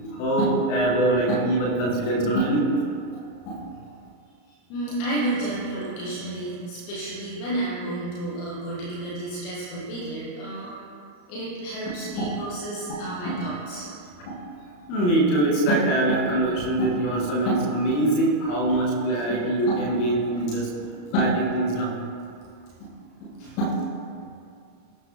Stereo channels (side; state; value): right; late; 34 ms